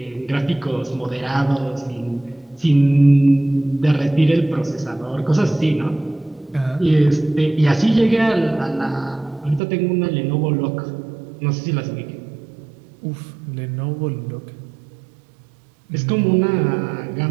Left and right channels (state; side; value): drops out; left; at 9.6 s